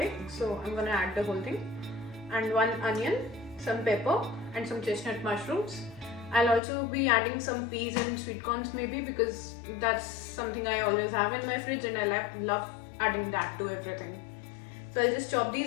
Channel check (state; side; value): drops out; right; at 6.6 s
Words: so I'm gonna add the whole thing, and one onion, some pepper and some chestnut mushrooms. I'll also be adding some peas and sweet corns maybe because that's something I always have in my fridge and I love adding that to everything. So I'll just chop